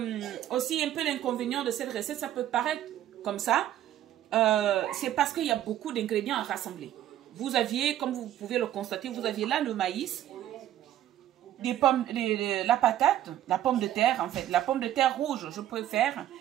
aussi un peu l'inconvénient de cette recette, ça peut paraître comme ça, c'est parce qu'il y a beaucoup d'ingrédients à rassembler. Vous aviez, comme vous pouvez le constater, vous aviez là le maïs, des pommes, la patate, la pomme de terre en fait, la pomme de terre rouge, je préfère,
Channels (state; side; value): quieter; left; 12.2 dB